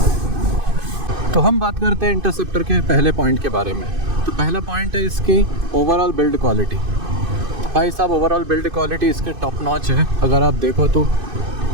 तो हम बात करते हैं इंटरसेप्टर के पहले पॉइंट के बारे में। तो पहला पॉइंट है इसकी ओवरऑल बिल्ड क्वालिटी। भाई साहब, ओवरऑल बिल्ड क्वालिटी इसकी टॉप नॉच है। अगर आप देखो तो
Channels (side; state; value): left; late; 2.5 ms